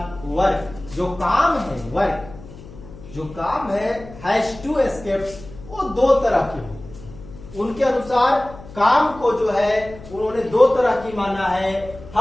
वर्क जो काम है, वर्क जो काम है, हैज टू एस्केप्स, वो दो तरह के हो। उनके अनुसार काम को जो है उन्होंने दो तरह की माना है।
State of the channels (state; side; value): noise; left; hum, 17 dB below the sound